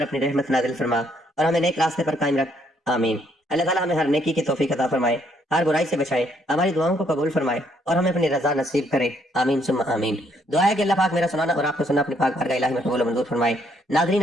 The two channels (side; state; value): both; normal; correlation 0.70